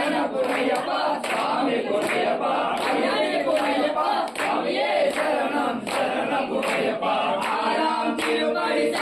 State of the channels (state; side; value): identical; both; correlation 1.00